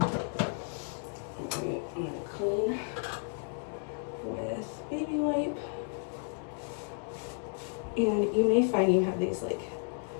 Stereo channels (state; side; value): silent; right; 56 dB below the other